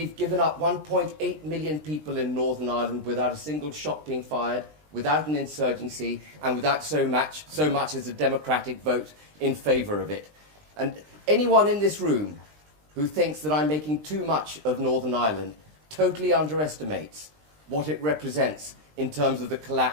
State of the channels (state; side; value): late; left; 20 ms